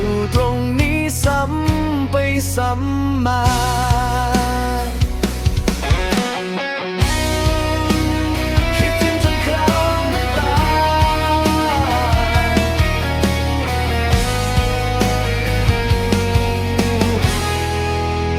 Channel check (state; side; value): identical; both; correlation 1.00